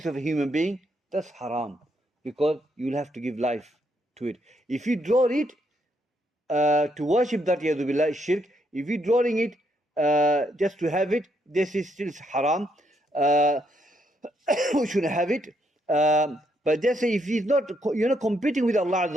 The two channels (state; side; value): normal; both; correlation 0.75